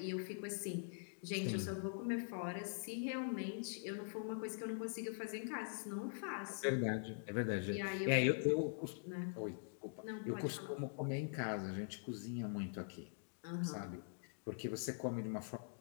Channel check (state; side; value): silent; right; digital silence